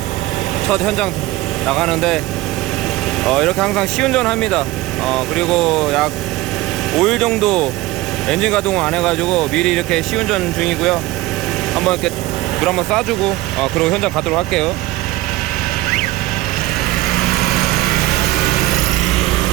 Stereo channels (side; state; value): left; quieter; 18.1 dB